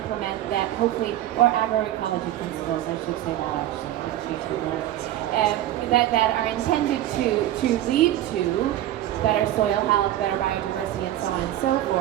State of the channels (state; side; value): quieter; left; 13.3 dB